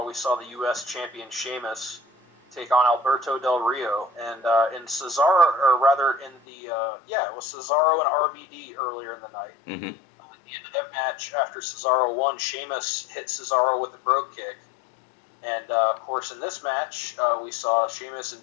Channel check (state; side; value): drops out; right; at 6.4 s